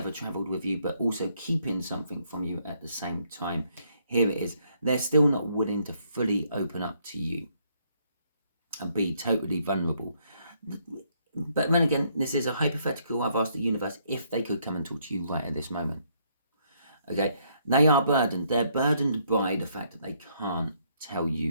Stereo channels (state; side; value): inverted; both; correlation -0.70